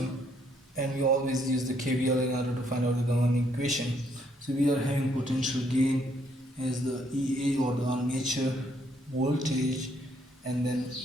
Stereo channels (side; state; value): both; normal; correlation 0.70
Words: and we always use the KVL in order to find out the governing equation. So we are having potential gain as the EA or the armature voltage, and then